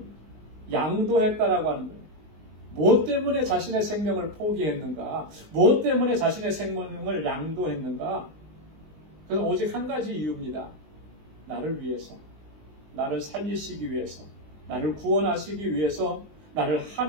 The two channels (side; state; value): left; late; 19 ms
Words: 양도했다라고 하는 거예요. 무엇 때문에 자신의 생명을 포기했는가? 무엇 때문에 자신의 생명을 양도했는가? 그건 오직 한 가지 이유입니다. 나를 위해서, 나를 살리시기 위해서, 나를 구원하시기 위해서, 나를